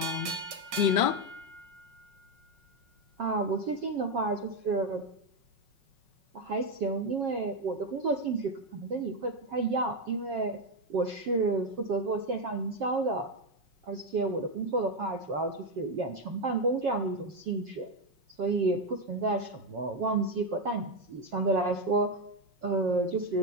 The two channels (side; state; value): left; late; 5.4 ms